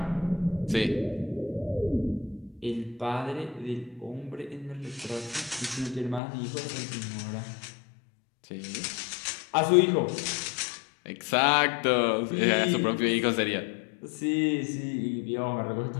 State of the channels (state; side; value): drops out; right; at 6.2 s